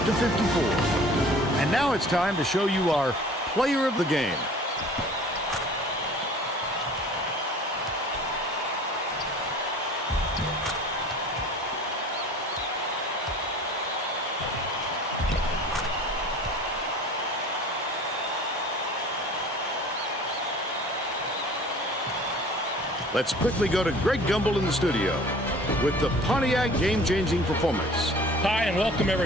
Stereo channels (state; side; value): normal; both; correlation 0.46